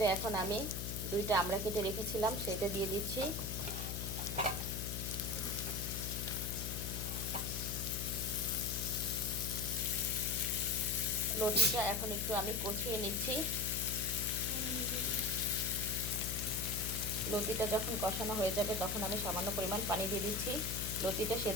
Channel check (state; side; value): noise; left; hum, 5 dB below the sound